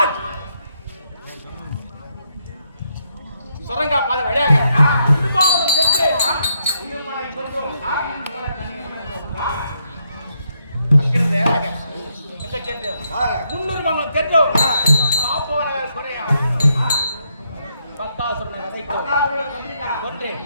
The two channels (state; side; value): inverted; both; correlation -0.77